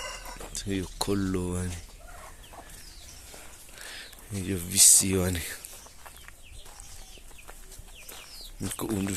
Soy collo, vale. Io visione. Ko undu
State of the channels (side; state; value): both; identical; correlation 1.00